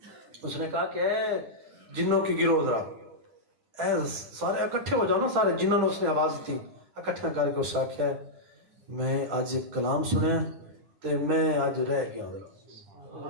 اس نے کہا کہ اے جنوں کی گروہ، ذرا اے سارے اکٹھے ہو جاؤ نا. سارے جنہوں نے اس نے آواز دی اکٹھا کر کے اس سے آخیا میں آج ایک کلام سنے تے میں آج رہ گیا.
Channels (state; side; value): late; left; 9.5 ms